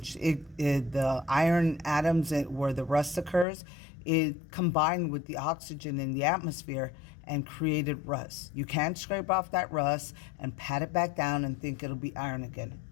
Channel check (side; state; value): right; drops out; at 3.5 s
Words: The iron atoms where the rust occurs, it combined with the oxygen in the atmosphere and created rust. You can't scrape off that rust and pat it back down and think it'll be iron again.